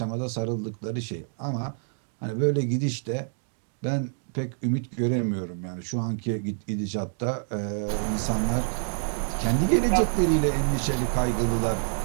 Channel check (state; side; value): silent; left; digital silence